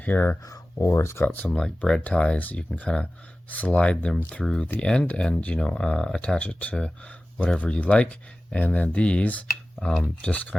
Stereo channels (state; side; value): normal; both; correlation 0.96